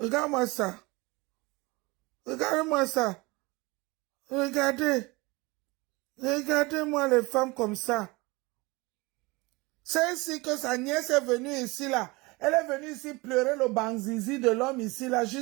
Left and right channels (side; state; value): left; quieter; 24.1 dB